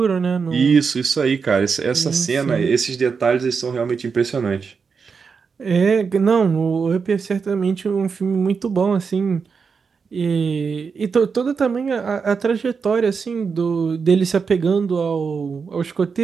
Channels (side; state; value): left; quieter; 5.5 dB